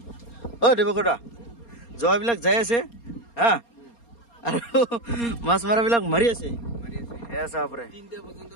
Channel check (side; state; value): right; late; 4.3 ms